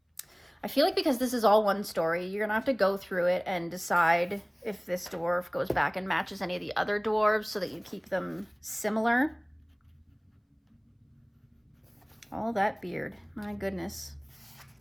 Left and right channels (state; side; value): identical; both; correlation 1.00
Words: I feel like because this is all one story, you're gonna have to go through it and decide if this dwarf goes back and matches any of the other dwarves so that you keep them similar. All that beard, my goodness.